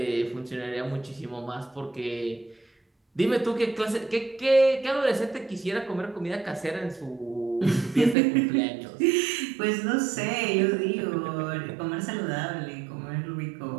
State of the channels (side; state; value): left; drops out; at 8.2 s